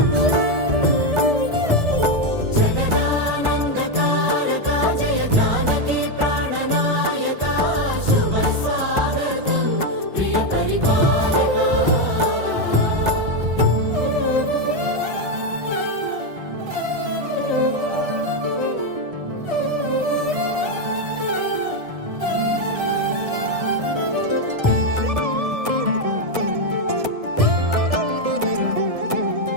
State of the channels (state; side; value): late; left; 1.7 ms